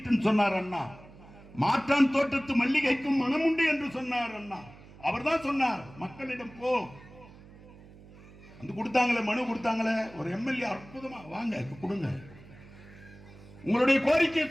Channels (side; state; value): right; noise; hum, 21 dB below the sound